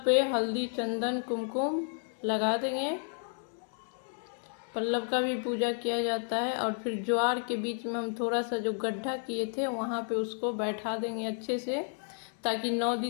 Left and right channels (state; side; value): silent; right; 57 dB below the other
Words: पे हल्दी, चंदन, कुमकुम लगा देंगे। पल्लव का भी पूजा किया जाता है। और फिर ज्वार के बीच में हम थोड़ा सा जो गड्ढा किए थे वहाँ पे उसको बैठा देंगे अच्छे से, ताकि 9